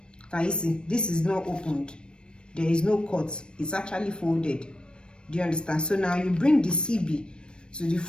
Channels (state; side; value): late; right; 0.054 ms